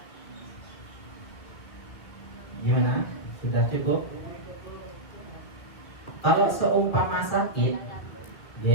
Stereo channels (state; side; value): late; right; 2.2 ms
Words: Gimana? Sudah cukup? Kalau seumpama sakit,